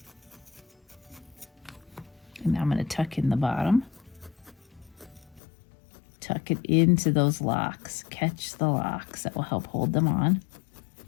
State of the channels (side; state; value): right; drops out; at 5.4 s